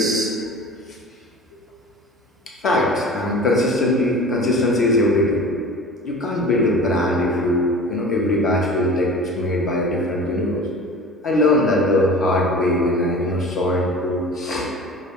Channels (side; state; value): both; normal; correlation 0.39